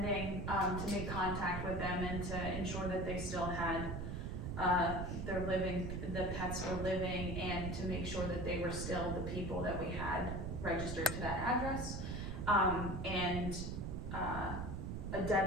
to make contact with them and to ensure that they still had the pets were living, and to make sure that they were still the people that we had registered to that address. A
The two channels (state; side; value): noise; right; rumble, 4 dB below the sound